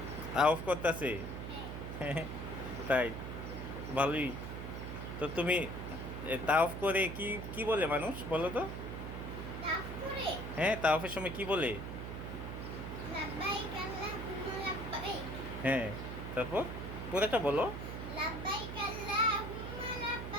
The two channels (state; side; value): noise; right; hum, 6 dB below the sound